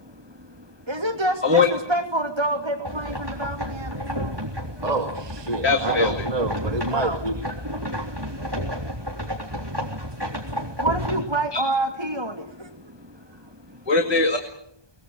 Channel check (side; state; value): left; late; 1.2 ms